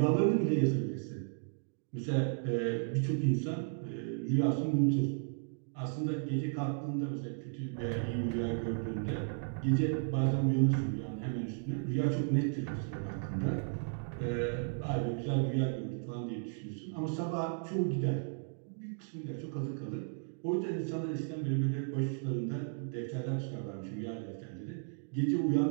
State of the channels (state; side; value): silent; left; digital silence